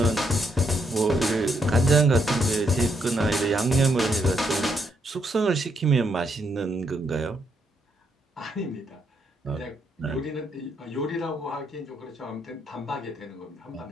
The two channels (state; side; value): normal; both; correlation 0.76